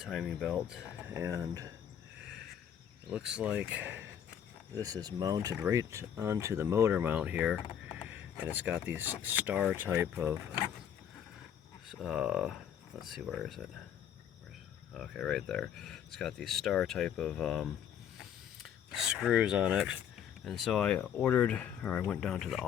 belt. And it looks like this is mounted right onto the motor mount here, and it's got these star type of let's see, where is it? Okay, right there. It's got these star type of screws on it. And so I went down to the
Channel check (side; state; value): right; quieter; 9.2 dB